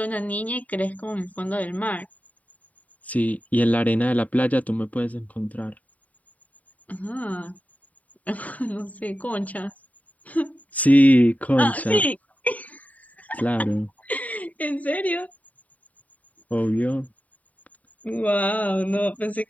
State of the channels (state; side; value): late; right; 0.071 ms